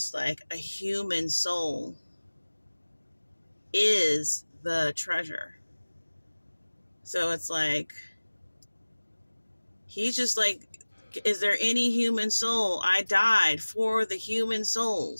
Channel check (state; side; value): inverted; both; correlation -1.00